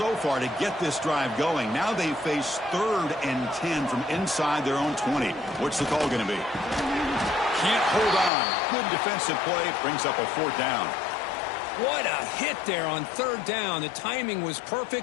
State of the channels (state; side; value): drops out; right; at 8.3 s